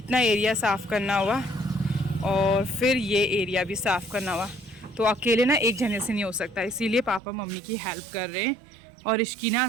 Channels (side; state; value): left; drops out; at 7.2 s